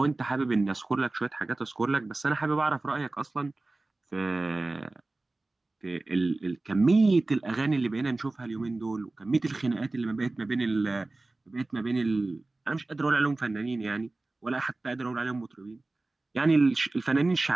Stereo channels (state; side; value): quieter; left; 3.1 dB